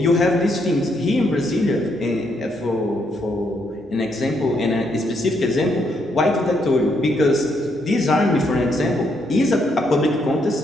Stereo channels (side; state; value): both; normal; correlation 0.75